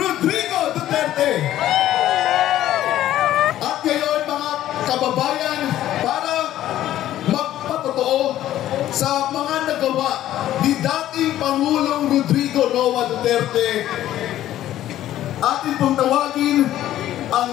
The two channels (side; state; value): right; quieter; 13.0 dB